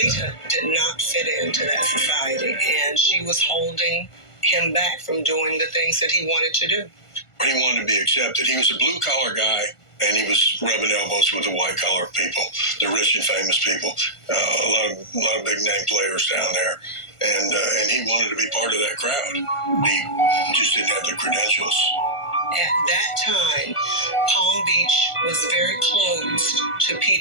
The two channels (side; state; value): right; late; 1.4 ms